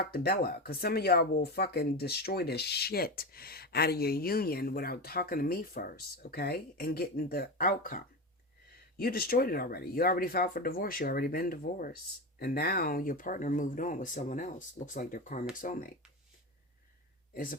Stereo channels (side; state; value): both; normal; correlation 0.20